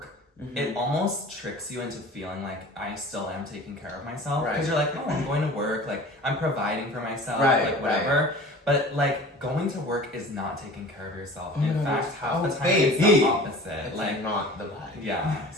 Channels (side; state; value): both; normal; correlation 0.41